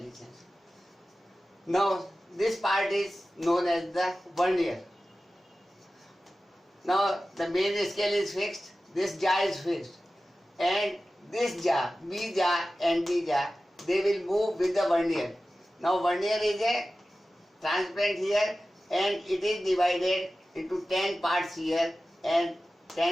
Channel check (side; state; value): both; normal; correlation 0.95